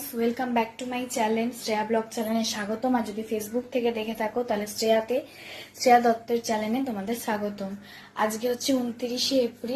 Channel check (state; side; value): identical; both; correlation 1.00